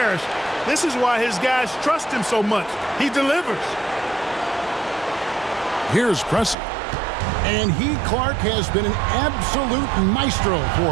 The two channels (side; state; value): left; drops out; at 6.6 s